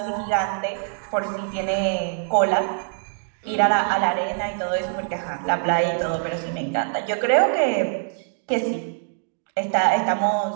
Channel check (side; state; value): left; silent; digital silence